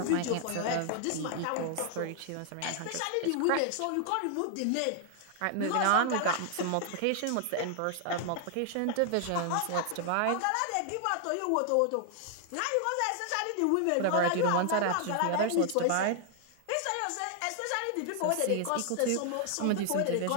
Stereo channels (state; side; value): different; both; correlation 0.00